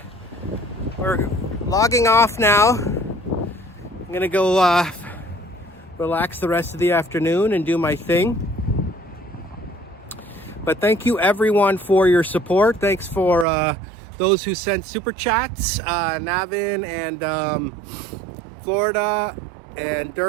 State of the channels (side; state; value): left; drops out; at 13.5 s